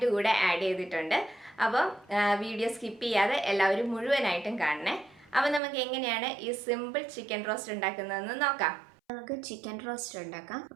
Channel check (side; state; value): left; drops out; at 5.6 s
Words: കൂടെ ആഡ് ചെയ്തിട്ടുണ്ട്. അപ്പം വീഡിയോ സ്കിപ്പ് ചെയ്യാതെ എല്ലാവരും മുഴുവനായിട്ടും കാണണേ. അപ്പം നമുക്ക് എങ്ങനെയാണ് ഈ സിമ്പിൾ ചിക്കൻ റോസ്റ്റ് ഉണ്ടാക്കുന്നതെന്ന് നോക്കാം. നമുക്ക് ചിക്കൻ റോസ്റ്റ് ഉണ്ടാക്കാം.